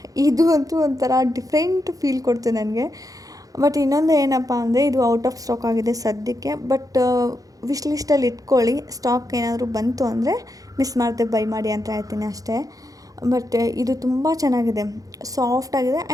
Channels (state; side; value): late; left; 0.17 ms